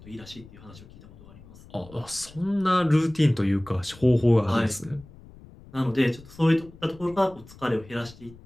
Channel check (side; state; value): left; noise; rumble, 21 dB below the sound